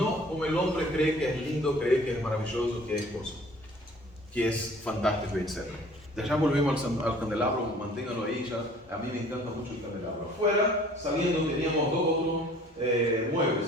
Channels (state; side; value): normal; both; correlation 0.52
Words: como el hombre cree que es lindo, cree que es maravilloso, que es fantástico, etc. De allá volvemos al candelabro, manténganlo ahí ya. A mí me encanta mucho el candelabro. Afuera, saliendo, teníamos 2 otros